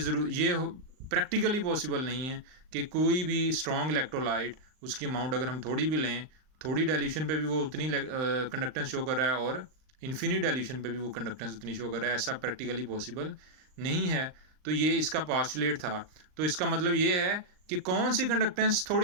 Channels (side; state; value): left; late; 38 ms